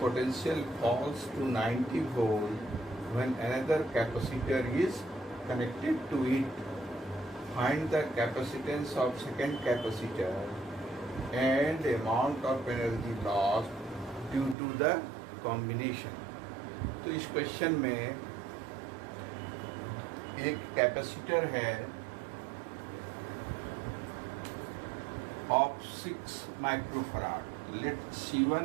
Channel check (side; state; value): left; drops out; at 14.6 s